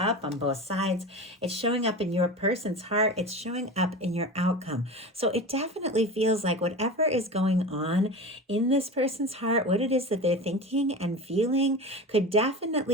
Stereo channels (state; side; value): normal; both; correlation 0.30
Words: on both sides. It's showing up in your person's heart. It's showing up in your outcome. So it definitely feels like whatever is going on in this person's heart, what it is that they're thinking and feeling, could